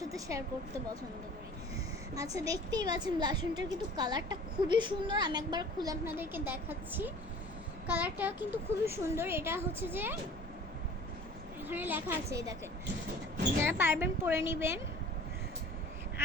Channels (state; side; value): normal; both; correlation 0.46